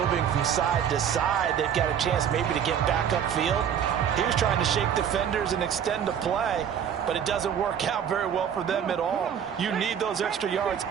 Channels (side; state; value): left; quieter; 8.5 dB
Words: from side to side, they've got a chance maybe to get back upfield. He was trying to shake defenders and extend the play, but it doesn't work out very well for them at all. You need those extra yards